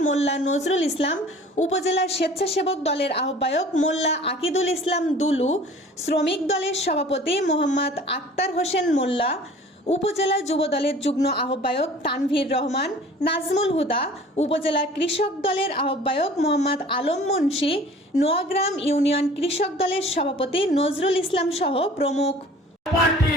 মোল্লা নজরুল ইসলাম, উপজেলা স্বেচ্ছাসেবক দলের আহ্বায়ক মোল্লা আকিদুল ইসলাম দুলু, শ্রমিক দলের সভাপতি মোহাম্মদ আক্তার হোসেন মোল্লা, উপজেলা যুব দলের যুগ্ম আহ্বায়ক তানভীর রহমান, নাজমুল হুদা, উপজেলা কৃষক দলের আহ্বায়ক মোহাম্মদ আলম মুন্সি, নোয়াগ্রাম ইউনিয়ন কৃষক দলের সভাপতি নজরুল ইসলাম সহ প্রমুখ।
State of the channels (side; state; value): both; normal; correlation 0.47